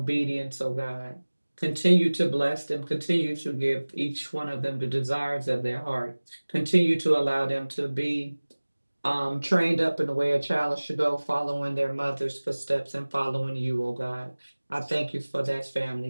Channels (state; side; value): inverted; both; correlation -1.00